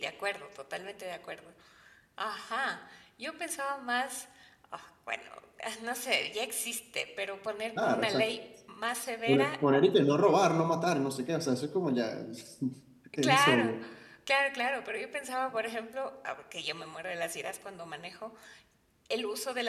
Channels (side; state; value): both; identical; correlation 1.00